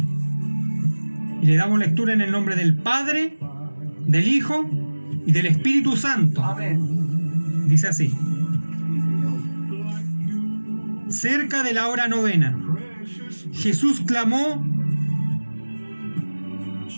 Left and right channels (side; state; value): both; inverted; correlation -1.00